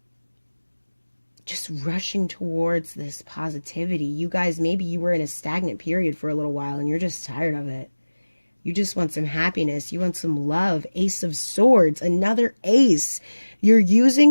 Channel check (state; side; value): inverted; both; correlation -1.00